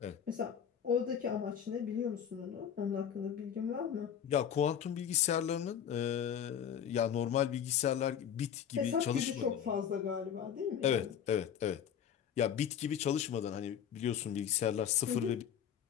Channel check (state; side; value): quieter; right; 8.7 dB